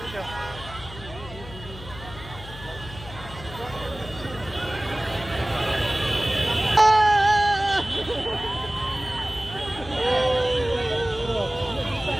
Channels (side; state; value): left; noise; hum, 15 dB below the sound